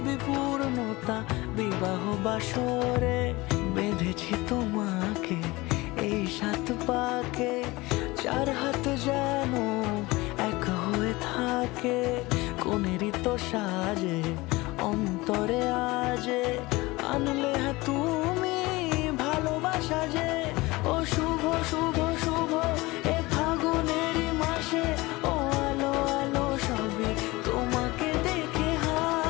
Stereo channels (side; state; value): right; quieter; 21.6 dB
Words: পূর্ণতা বিবাহ বাসরে। বেঁধেছি তোমাকে এই 7 পাকে, 4 হাত যেন এক হয়ে থাকে। কোনেরই তো সাজে অন্তরে আজে, আনলে হ্যাঁ তুমি ভালোবাসা যে। ও শুভ শুভ শুভ এ ফাগুনেরই মাসে, ও আলো আলো সবই তোমাকে দেখে